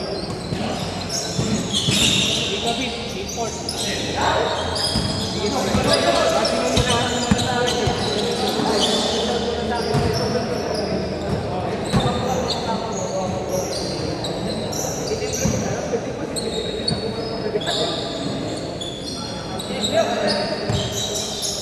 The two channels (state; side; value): identical; both; correlation 1.00